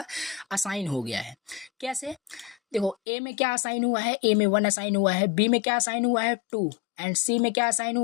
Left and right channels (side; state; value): right; drops out; at 3.0 s